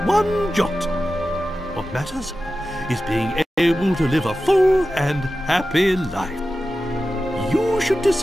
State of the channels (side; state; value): both; normal; correlation 0.93